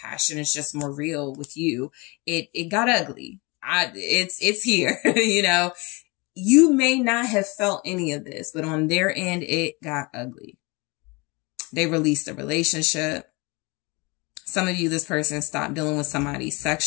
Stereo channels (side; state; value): right; quieter; 27.1 dB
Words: is just more real with you. It got ugly. It's here, you know. You may not have felt any of this, but on their end, it got ugly. They released a relationship. Some of you, this person stopped dealing with somebody